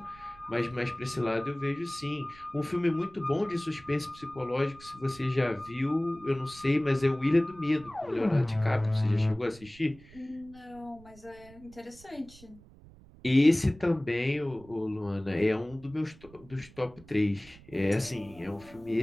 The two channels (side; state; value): right; noise; rumble, 22 dB below the sound